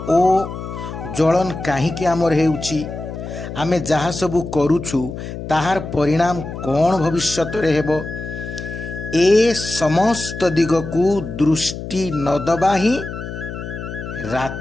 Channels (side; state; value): left; noise; hum, 8 dB below the sound